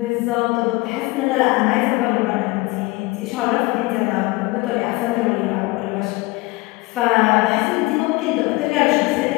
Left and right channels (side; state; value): right; quieter; 22.7 dB